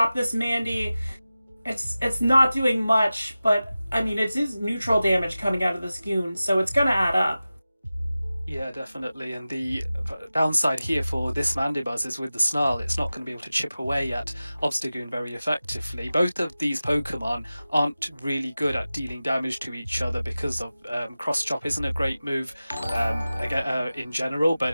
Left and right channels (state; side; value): inverted; both; correlation -0.96